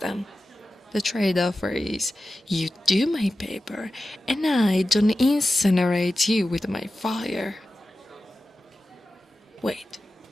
The trade offer is you do my paper and I don't incinerate you with my fire. Wait,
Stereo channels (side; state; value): both; normal; correlation 0.94